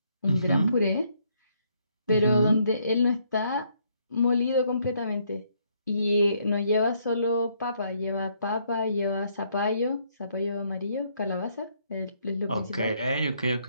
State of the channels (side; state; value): both; inverted; correlation -0.70